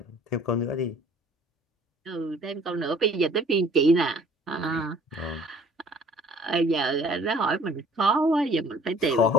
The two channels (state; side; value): normal; both; correlation 0.53